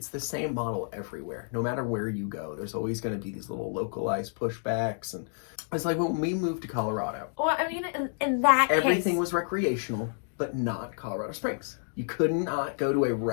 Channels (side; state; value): right; silent; 58 dB below the other